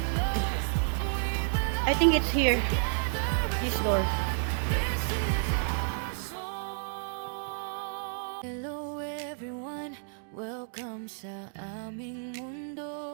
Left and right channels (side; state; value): left; silent; digital silence